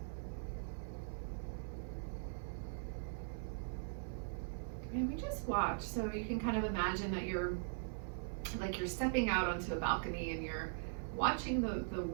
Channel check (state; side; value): silent; left; 50 dB below the other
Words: And we just watch. So you can kind of imagine that you're stepping out onto a balcony and you're watching the